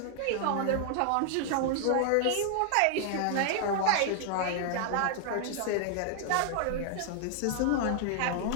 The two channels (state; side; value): different; both; correlation 0.00